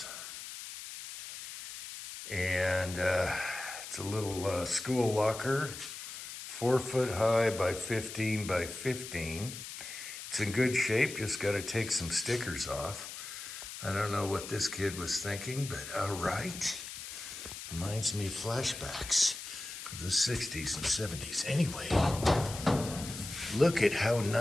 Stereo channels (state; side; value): noise; left; hiss, 10 dB below the sound